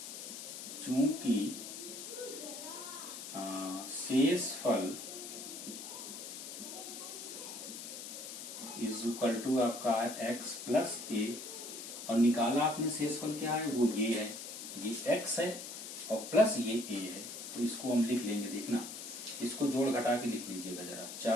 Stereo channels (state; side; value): noise; left; hiss, 9 dB below the sound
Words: चूंकि शेषफल इज इक्वल टू आपका है x प्लस ए, और निकाला आपने शेषफल क्या है, वो ये है, ये x है और प्लस ये a है। तो इसको हम लिख लेंगे, देखना इसको जोड़ घटा के लिख लीजिएगा जरा।